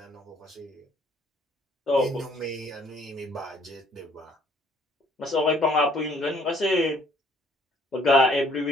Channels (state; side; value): normal; both; correlation 0.61